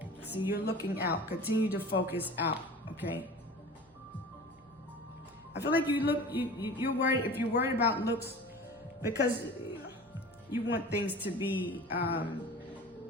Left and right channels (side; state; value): both; normal; correlation 0.38